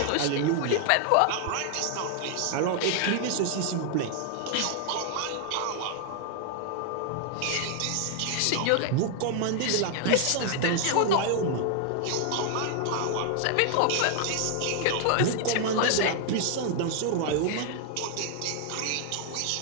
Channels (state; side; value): different; both; correlation 0.00